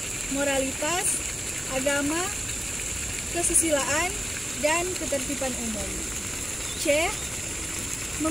moralitas, agama, kesusilaan, dan ketertiban umum. C.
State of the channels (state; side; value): normal; both; correlation 0.96